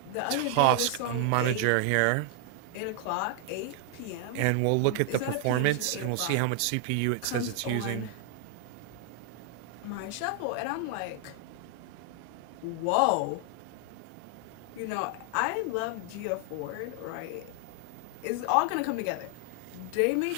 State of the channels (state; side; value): different; both; correlation 0.00